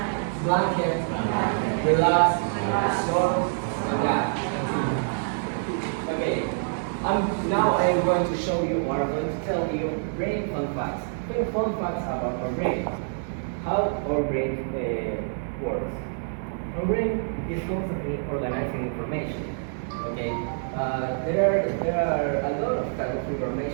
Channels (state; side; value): silent; left; digital silence